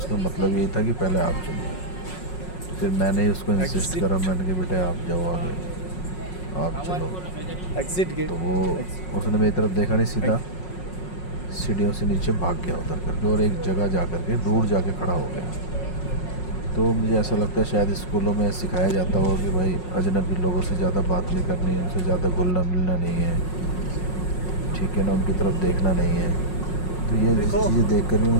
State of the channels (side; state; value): right; late; 5.5 ms